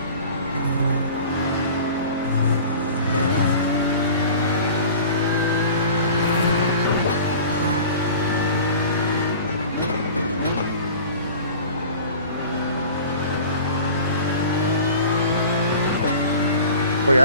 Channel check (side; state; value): both; inverted; correlation -0.41